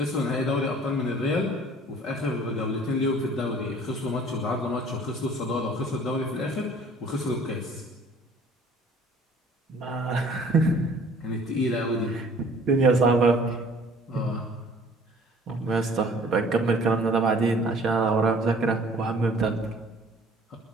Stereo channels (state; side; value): normal; both; correlation 0.52